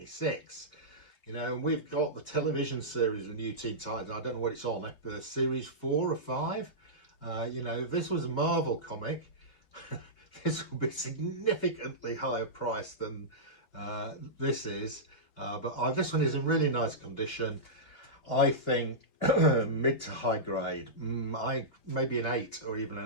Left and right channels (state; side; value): late; right; 2.7 ms